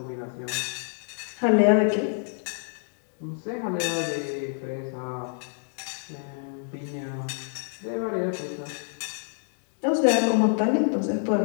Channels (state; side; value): silent; right; digital silence